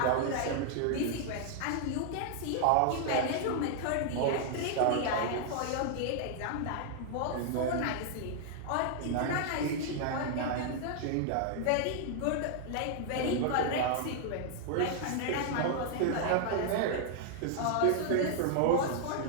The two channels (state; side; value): different; both; correlation 0.00